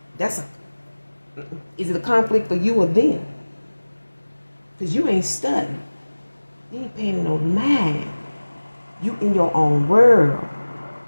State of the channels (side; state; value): both; inverted; correlation -1.00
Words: it a conflict for you or them? Because you ain't studying. You ain't paying no mind. You in your own world.